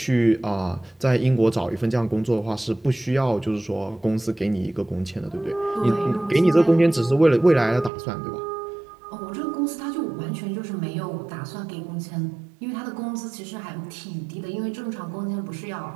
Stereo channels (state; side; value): drops out; left; at 7.9 s